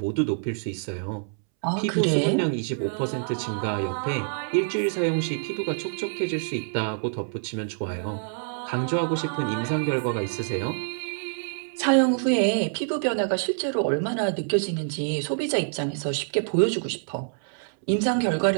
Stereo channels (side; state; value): left; silent; 61 dB below the other